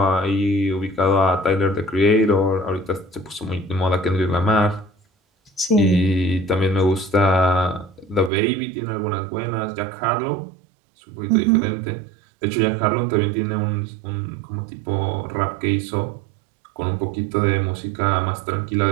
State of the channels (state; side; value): drops out; left; at 8.3 s